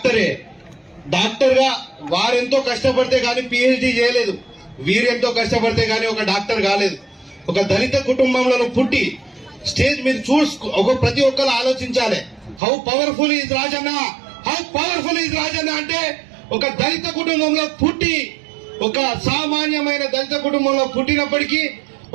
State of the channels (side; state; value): left; drops out; at 12.6 s